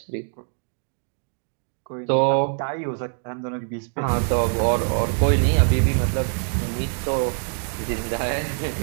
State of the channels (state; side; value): silent; left; 56 dB below the other